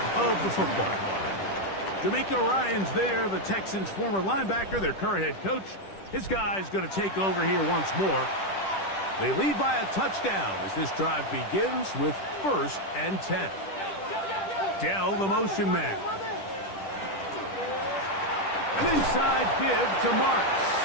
of the football. D'Amico Ryan's there, the Texans' former linebacker, their current head coach. His guy's going to take over here once more. They lead by a touchdown as this drive begins with 1st and 10. Dell, the motion man. An inside give to Marks.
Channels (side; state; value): right; late; 10 ms